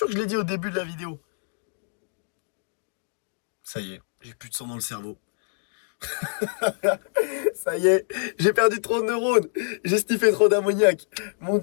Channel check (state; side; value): silent; right; digital silence